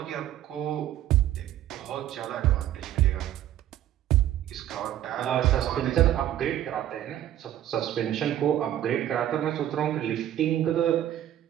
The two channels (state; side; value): quieter; left; 12.2 dB